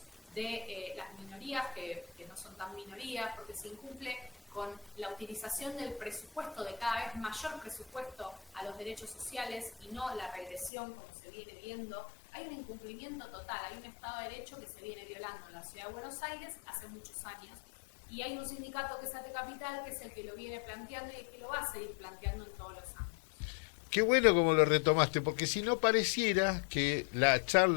de las minorías, que no son tan minorías, porque se incumple con la utilización del presupuesto, de cada vez mayor presupuesto a los derechos sociales y no la regresión como se viene viendo. Hay un incumplimiento total, hay un Estado de Derecho que se viene violando en la Ciudad de Buenos Aires hace muchos años, y hay un sindicato que es ATE Capital, que es el que lo viene planteando y el que lo va a seguir planteando en todos los años. Qué bueno como lo retomaste, porque si no pareciera que la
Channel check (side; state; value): right; drops out; at 10.7 s